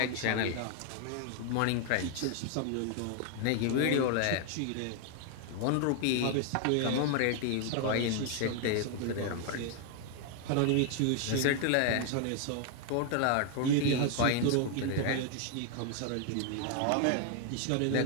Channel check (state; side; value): different; both; correlation 0.00